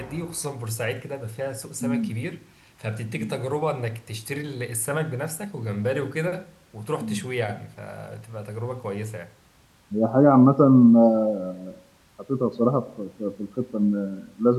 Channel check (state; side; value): identical; both; correlation 1.00